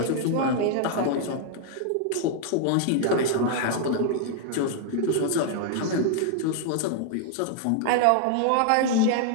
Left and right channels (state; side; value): different; both; correlation 0.00